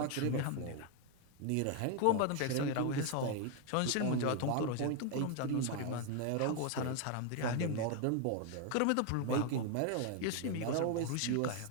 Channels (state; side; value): different; both; correlation 0.01